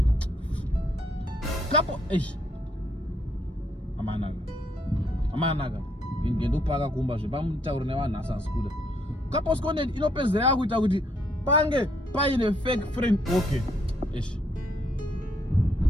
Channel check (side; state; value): both; normal; correlation 0.72